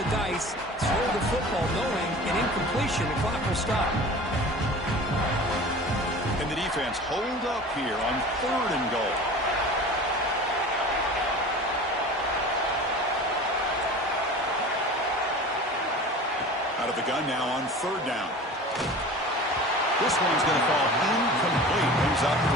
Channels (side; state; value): both; normal; correlation 0.38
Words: dice, throw the football, knowing an incompletion, the clock will stop. And the defense hold up here on third and goal. Out of the gun now on third down. This one's going to fall incomplete. Brings up